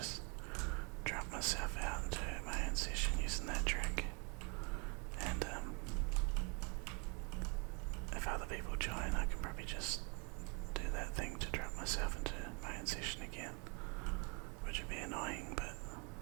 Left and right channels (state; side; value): quieter; left; 34.3 dB